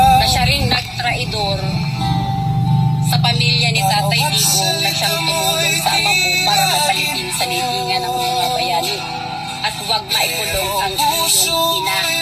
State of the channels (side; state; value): both; identical; correlation 1.00